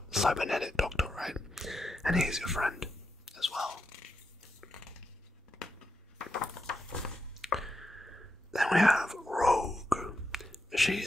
cybernetic doctor, right? And he's your friend as well. Then we have Rogue. She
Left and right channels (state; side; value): normal; both; correlation 0.85